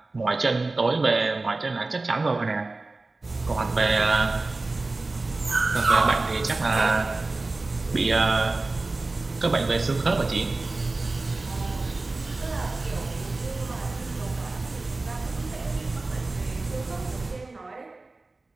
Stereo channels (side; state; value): left; quieter; 3.3 dB